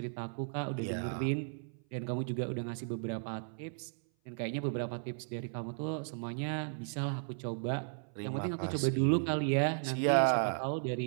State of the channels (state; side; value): silent; left; 54 dB below the other